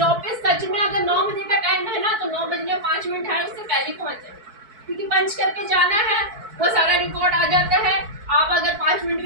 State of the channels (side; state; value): left; late; 4.6 ms